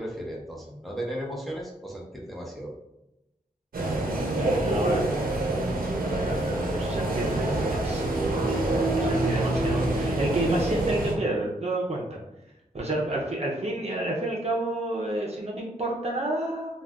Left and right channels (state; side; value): normal; both; correlation 0.69